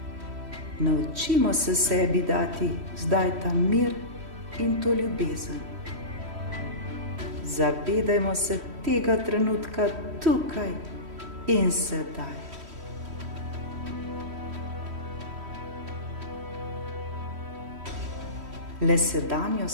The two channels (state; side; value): late; left; 3.1 ms